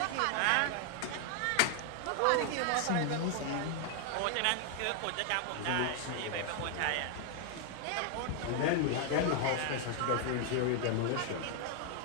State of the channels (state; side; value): different; both; correlation 0.00